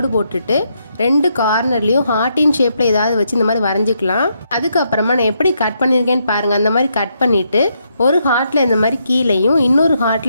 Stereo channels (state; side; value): inverted; both; correlation -0.78